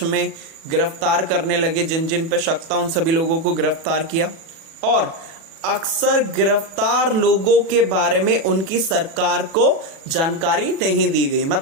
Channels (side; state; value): left; late; 36 ms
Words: में गिरफ्तार करने लगे, जिन जिन पे शक था उन सभी लोगों को गिरफ्तार किया। और अक्सर गिरफ्तार लोगों के बारे में उनकी सरकार को जानकारी नहीं दी गई।